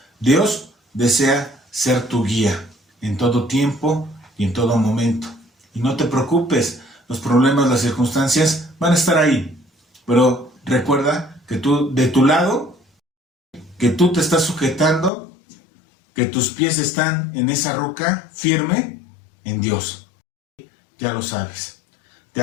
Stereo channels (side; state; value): right; drops out; at 15.1 s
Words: Dios desea ser tu guía en todo tiempo y en todo momento. Y no te preocupes, los problemas, las circunstancias van a estar ahí. Pero recuerda que tú, de tu lado, que tú te estás sujetando, que tus pies están en esa roca firme en Dios. Ya lo sabes. Te